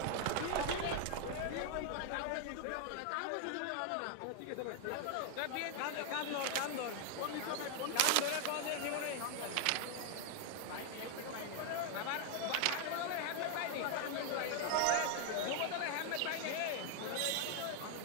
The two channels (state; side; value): different; both; correlation 0.00